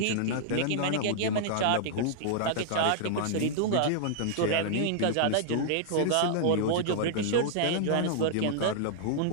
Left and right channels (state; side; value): different; both; correlation -0.01